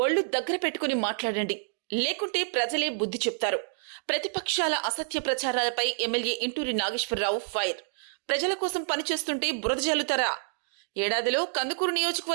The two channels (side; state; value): left; silent; digital silence